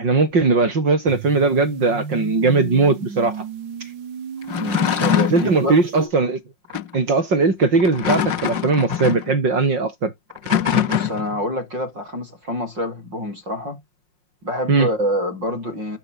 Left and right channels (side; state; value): left; late; 5.6 ms